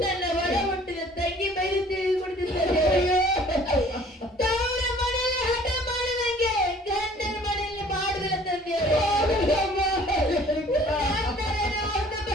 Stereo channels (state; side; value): normal; both; correlation 0.53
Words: ನನ್ನ ಒಡ ಹುಟ್ಟಿದ ತಂಗಿ ಬೈದು ತಿಳಿದುಕೊಂಡಿದ್ದು ತಂದೆಯವರೇ. ತವರ ಮನೆಯಲ್ಲಿ ಹಠ ಮಾಡಿದಂಗೆ ಗಂಡನ ಮನೆಯಲ್ಲಿ ಮಾಡುವುದಿಲ್ಲ ತಂದೆಯವರೇ.